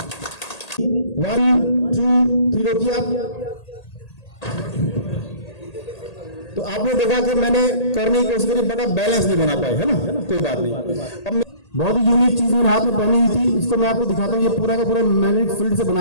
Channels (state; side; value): late; right; 1.8 ms